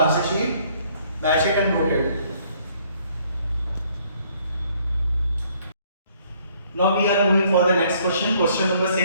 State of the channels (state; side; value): inverted; both; correlation -0.63